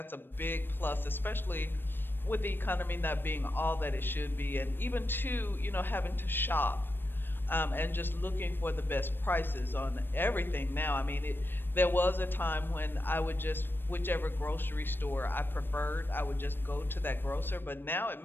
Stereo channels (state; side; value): late; right; 0.097 ms